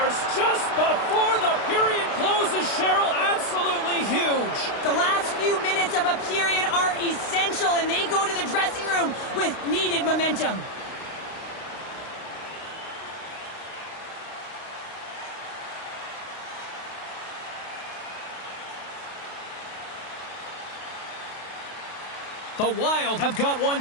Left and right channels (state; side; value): late; right; 32 ms